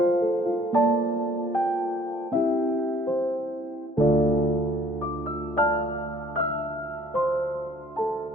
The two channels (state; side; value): normal; both; correlation 0.57